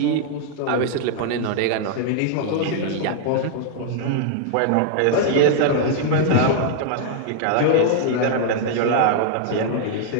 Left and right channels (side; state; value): both; different; correlation -0.01